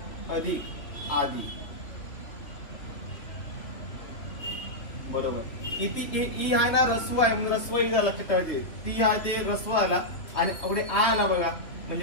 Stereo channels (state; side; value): late; right; 2.8 ms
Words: अधिक आदि बरोबर इथे ई आहे ना रस्व आहे म्हणून रस्व ई झाला लक्षात ठेवायचे. ती आहे ते रस्व आला आणि पुढे आ आला बघा